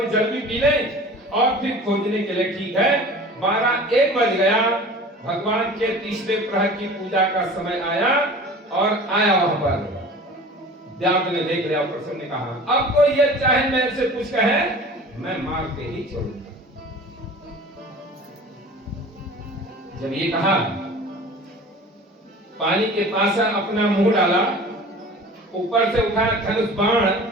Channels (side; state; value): both; normal; correlation 0.41